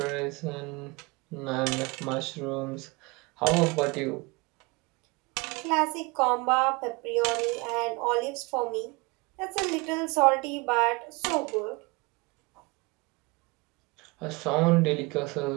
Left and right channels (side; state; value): left; quieter; 26.6 dB